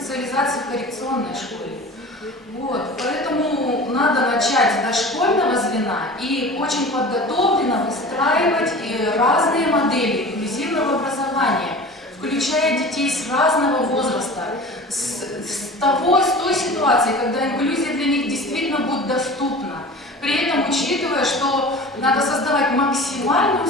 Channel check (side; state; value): both; normal; correlation 0.38